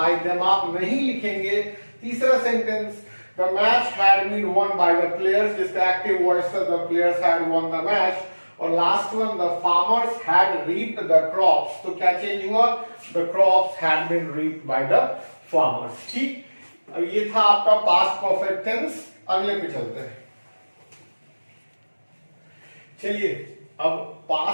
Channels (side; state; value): both; inverted; correlation -1.00